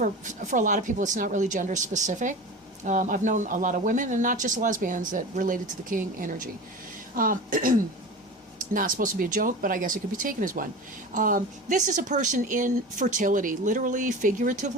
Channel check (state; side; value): normal; both; correlation 0.32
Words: a lot of people, it's not really gender specific. I've known a lot of women, and not just lesbians, that related to the King energy. Not supposed to be a joke, but I guess it could be taken as one. This is a person in fertility, literally,